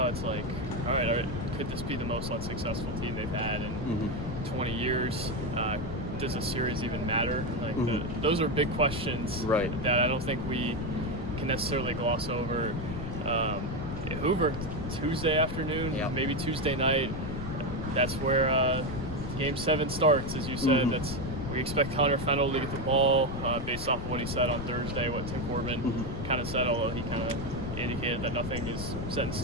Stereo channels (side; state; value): left; noise; rumble, 7 dB below the sound